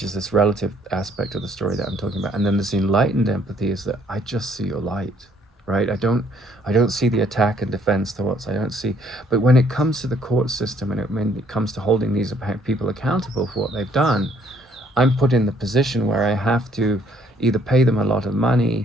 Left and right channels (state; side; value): normal; both; correlation 0.64